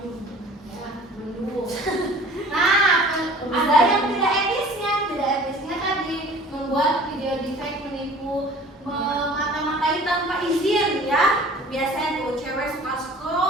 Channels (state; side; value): normal; both; correlation 0.46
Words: Mendung. Nah ada yang tidak etisnya tadi membuat video deepfake menipu, memata-matai tanpa izin ya. Biasanya tuh cewek suka